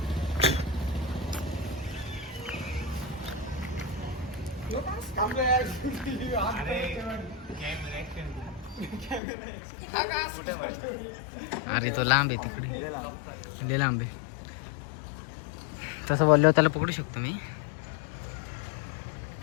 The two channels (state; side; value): drops out; right; at 9.2 s